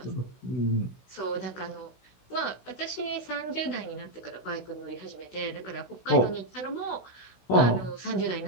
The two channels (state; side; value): late; right; 16 ms